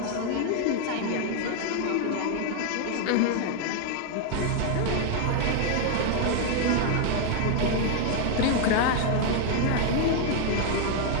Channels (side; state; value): both; different; correlation 0.00